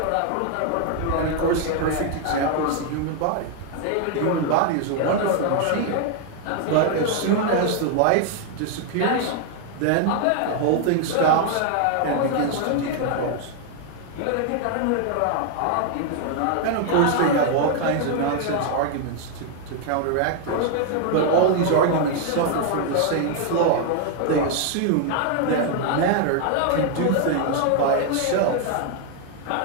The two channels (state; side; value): different; both; correlation 0.00